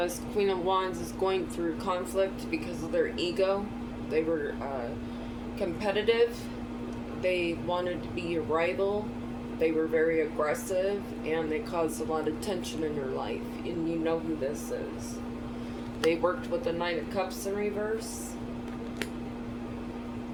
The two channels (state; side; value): identical; both; correlation 1.00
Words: Queen of Wands is going through conflict because of their ego. They were competitive. They wanted to be a rival. They were very aggressive, and they caused a lot of tension in your life. And you know who this is. They worked with the Knight of Cups in reverse.